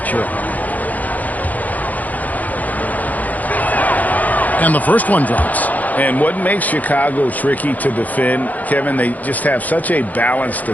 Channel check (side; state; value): right; late; 0.079 ms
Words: sure. And the first one drops. And what makes Chicago tricky to defend, Kevin, they just have such a balanced